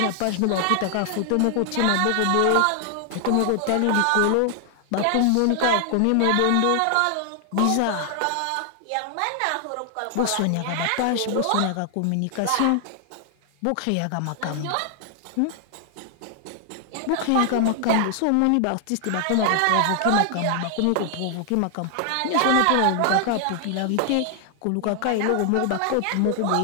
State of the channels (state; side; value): different; both; correlation 0.00